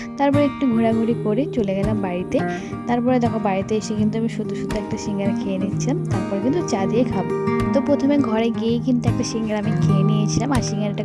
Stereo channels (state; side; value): identical; both; correlation 1.00